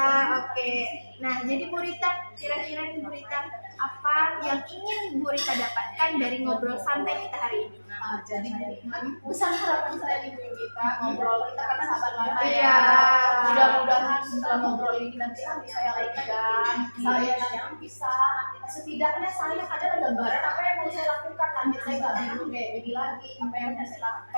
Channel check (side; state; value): both; inverted; correlation -1.00